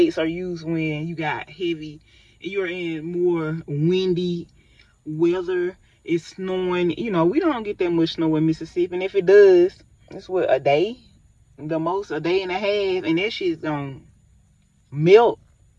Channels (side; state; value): both; identical; correlation 1.00